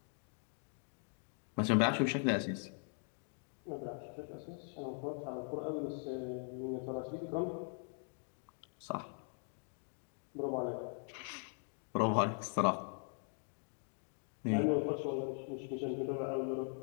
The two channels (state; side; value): silent; right; 51 dB below the other